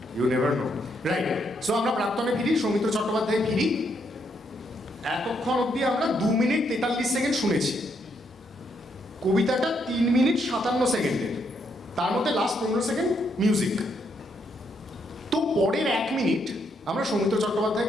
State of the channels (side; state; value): both; normal; correlation 0.75